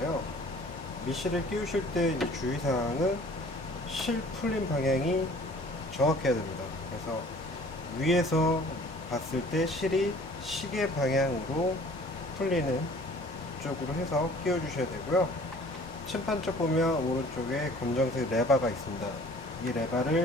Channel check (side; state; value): both; normal; correlation 0.51